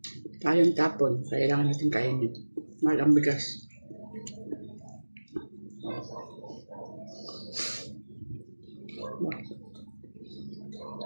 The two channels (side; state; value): both; inverted; correlation -1.00